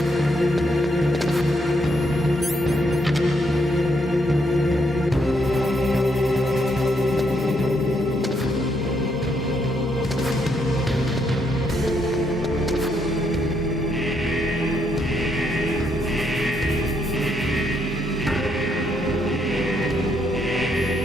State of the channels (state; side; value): normal; both; correlation 0.75